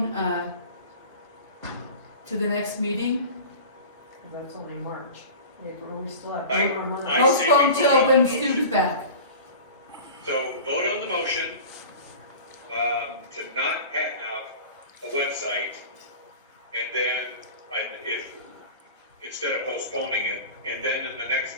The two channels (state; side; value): inverted; both; correlation -0.36